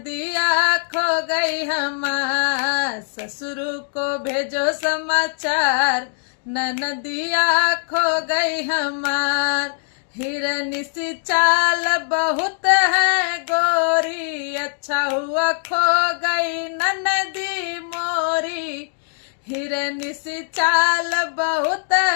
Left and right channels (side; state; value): right; silent; digital silence